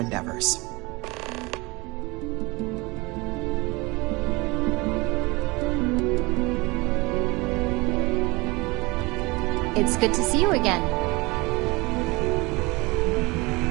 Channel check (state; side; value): quieter; left; 24.4 dB